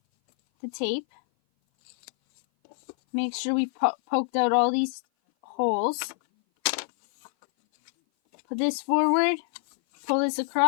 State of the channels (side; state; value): right; silent; 57 dB below the other